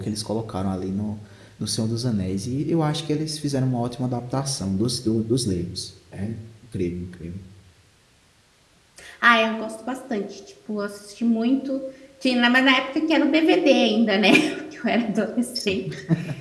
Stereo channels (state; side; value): identical; both; correlation 1.00